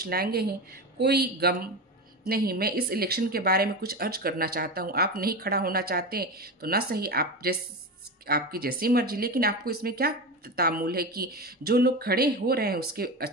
लाएंगे ही, कोई गम नहीं। मैं इस इलेक्शन के बारे में कुछ अर्ज करना चाहता हूँ। आप नहीं खड़ा होना चाहते तो ना सही, आपकी जैसी मर्जी, लेकिन आपको इसमें क्या तामुल है कि जो लोग खड़े हो रहे हैं उसके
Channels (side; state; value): both; normal; correlation 0.21